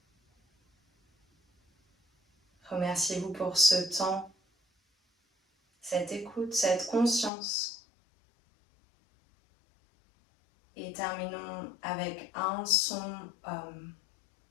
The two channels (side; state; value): right; drops out; at 7.3 s